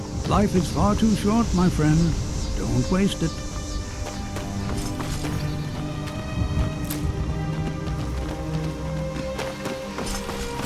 Life is far too short, my friend. Don't waste it.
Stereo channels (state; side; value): identical; both; correlation 1.00